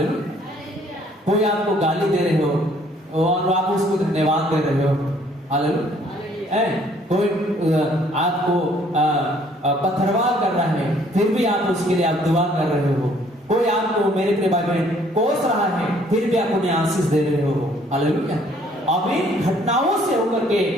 कोई आपको गाली दे रहे हो और आप उसको धन्यवाद दे रहे हो, हालेलुया। कोई आपको पत्थरवार कर रहा है, फिर भी आप उसके लिए आप दुआ कर रहे हो। कोई आपको, मेरे प्रिय भाई बहन, कोस रहा है, फिर भी आप उन्हें आशीष दे रहे हो, हालेलुया। अब इन घटनाओं से होकर के,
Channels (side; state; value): both; normal; correlation 0.61